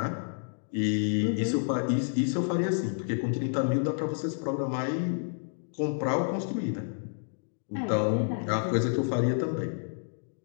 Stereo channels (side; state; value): right; silent; digital silence